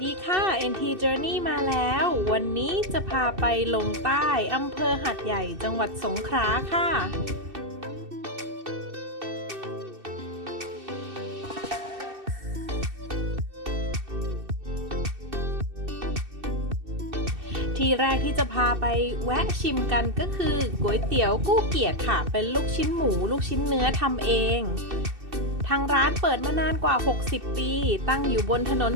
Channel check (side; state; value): left; late; 2.6 ms